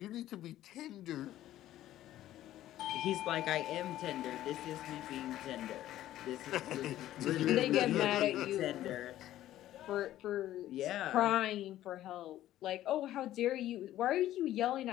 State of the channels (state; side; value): quieter; right; 13.5 dB